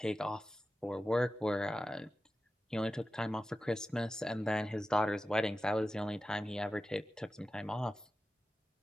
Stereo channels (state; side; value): normal; both; correlation 0.93